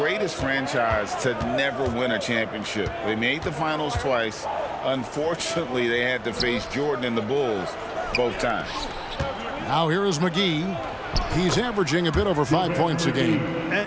franchise to never win a championship. They made the finals twice. Unfortunately, they had to face Jordan and the Bulls both times. Now here is McGee. He's averaging a bit over 5 points a game.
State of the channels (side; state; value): both; identical; correlation 1.00